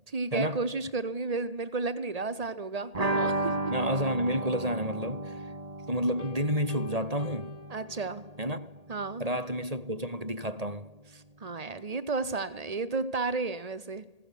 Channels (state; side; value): late; left; 1.8 ms